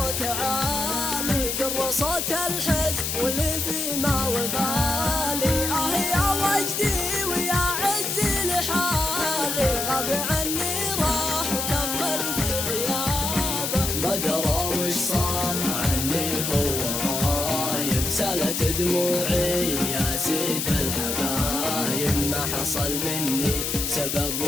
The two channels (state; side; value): noise; left; hiss, 1 dB below the sound